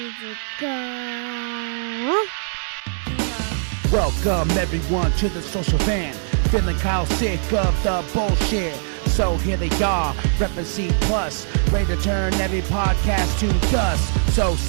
to go. Welcome everyone to the social van. Feeling kind of sick of the bullshit. So here they are, reppin' C+, ready to turn every podcast to dust. So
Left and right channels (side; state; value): left; silent; 65 dB below the other